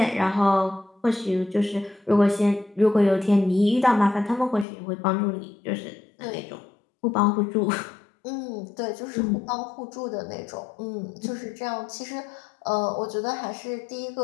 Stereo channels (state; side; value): drops out; right; at 4.7 s